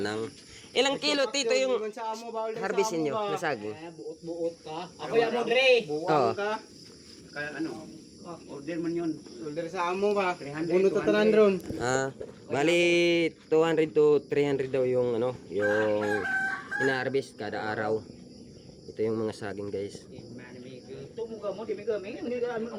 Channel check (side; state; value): both; identical; correlation 1.00